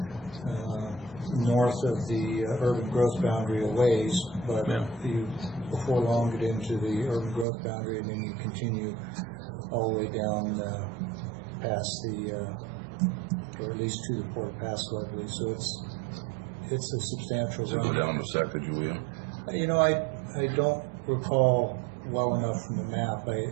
north of the urban growth boundary a ways, but you before long get into the urban growth boundary, and then you continue all the way down past the, or at least to the Port of Pasco, I believe. So it's a substantial. Does it go down to Sacagawea? You know, I don't recall well enough from the map.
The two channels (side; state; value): left; drops out; at 7.5 s